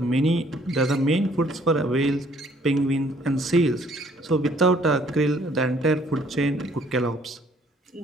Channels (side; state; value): both; normal; correlation 0.61